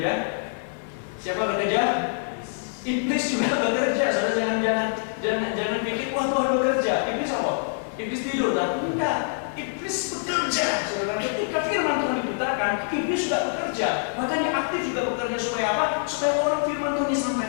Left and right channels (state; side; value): silent; right; 58 dB below the other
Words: Siapa bekerja? Iblis juga bekerja. Saudara jangan pikir wah Tuhan bekerja. Iblis apa? Iblis tidur, tapi enggak. Iblis bekerja. Saudara, ketika firman Tuhan diberitakan, iblis juga bekerja. Makanya aktif juga bekerja supaya apa? Supaya orang firman Tuhan